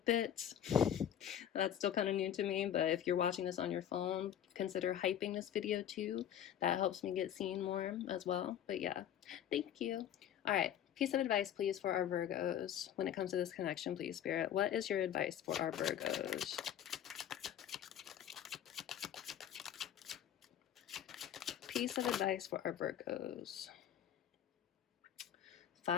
it. That's still kind of new to me, but if you're watching this on your phone, consider hyping this video too. That helps me get seen more as well. But yeah, thank you. All right, piece of advice, please, for our Virgos when it comes to this connection, please, Spirit. What is your advice for our Virgos? Piece of advice for our Virgos.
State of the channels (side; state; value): right; quieter; 10.2 dB